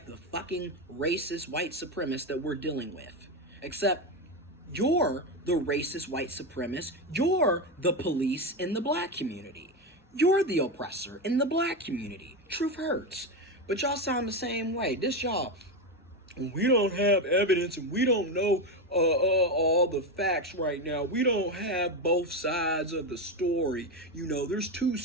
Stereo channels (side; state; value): both; normal; correlation 0.13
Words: the fucking racist white supremacists that we're dealing with. Except you're the racist white supremacist. You're the police in the black community. You're the oppressor in the black community. Truth hurts. But y'all sound the same way. This y'all, we don't have evidence and we don't know all the facts right now. We don't have both sides of the story. You know, there's two